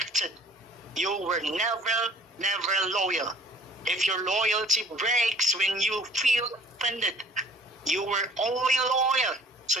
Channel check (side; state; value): both; normal; correlation 0.52